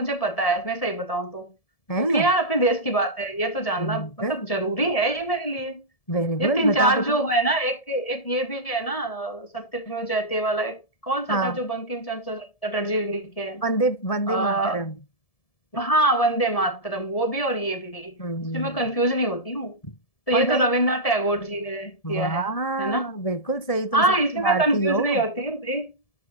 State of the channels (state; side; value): late; right; 1.7 ms